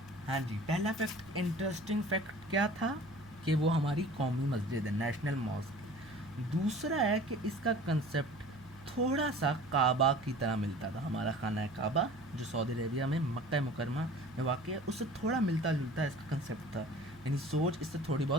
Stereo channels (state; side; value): noise; right; hum, 23 dB below the sound